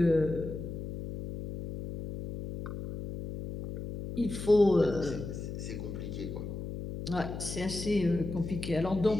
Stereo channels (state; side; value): noise; left; hum, 7 dB below the sound